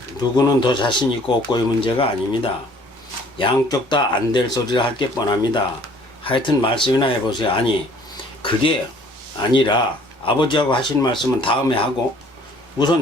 누구는 더 자신 있고 없고의 문제가 아닙니다. 양쪽 다 안 될 소리를 할 게 뻔합니다. 하여튼 말씀이나 해보세요. 아니 그게 아니라 아버지하고 하신 말씀은 다음에 하고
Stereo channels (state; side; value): normal; both; correlation 0.56